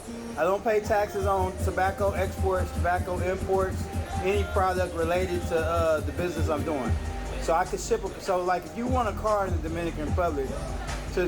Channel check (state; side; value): identical; both; correlation 1.00